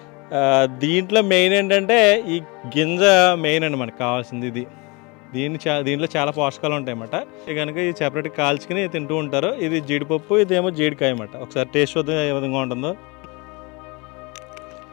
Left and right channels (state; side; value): quieter; right; 27.8 dB